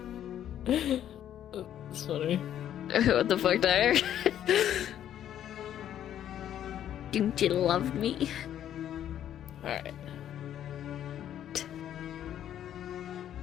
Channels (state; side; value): quieter; right; 10.7 dB